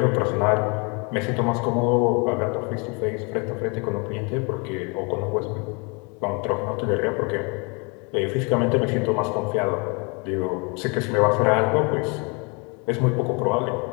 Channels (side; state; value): right; quieter; 32.1 dB